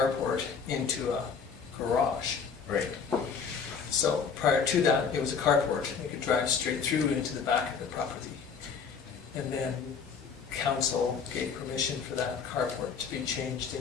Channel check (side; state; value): right; quieter; 6.0 dB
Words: into a garage. Right. So prior to that, it was a carport, they could drive straight through into the back of the property. And then council gave permission for that carport to be changed